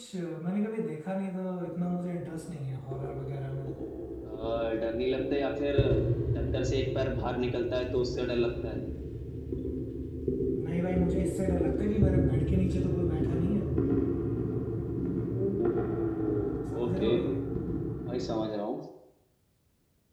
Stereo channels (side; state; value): both; identical; correlation 1.00